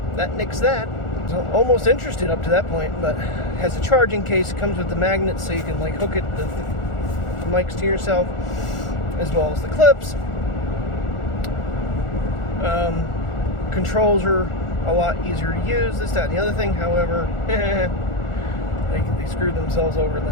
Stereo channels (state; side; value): late; right; 1.4 ms